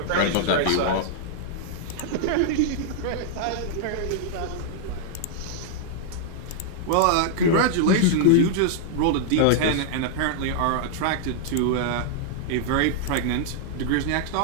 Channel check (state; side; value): different; both; correlation -0.01